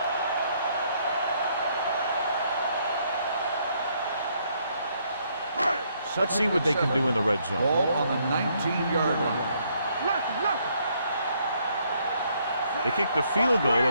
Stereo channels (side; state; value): both; inverted; correlation -0.70